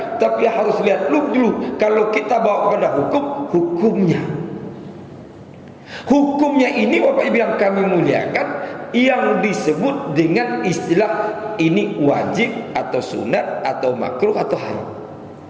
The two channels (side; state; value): both; identical; correlation 1.00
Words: tapi harus lihat dulu kalau kita bawa pada hukumnya. Hukumnya ini Bapak Ibu yang kami muliakan, yang disebut dengan istilah ini wajib atau sunat atau makruh atau haram.